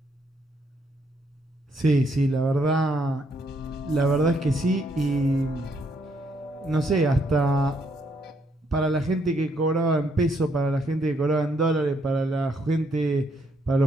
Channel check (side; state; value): both; normal; correlation 0.72